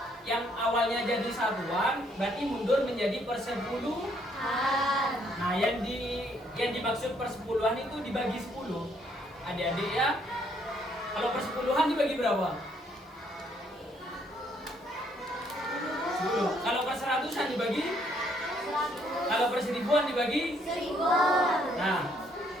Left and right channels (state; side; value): normal; both; correlation 0.68